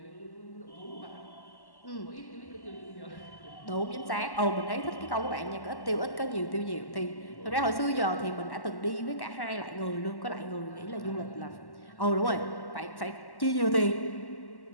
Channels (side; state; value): right; late; 1.1 ms